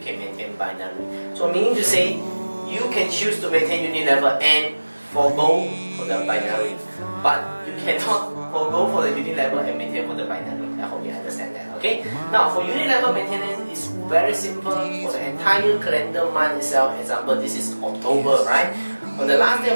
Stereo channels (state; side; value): inverted; both; correlation -1.00